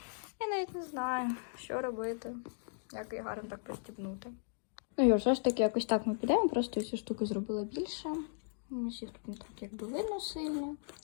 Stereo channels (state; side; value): silent; right; digital silence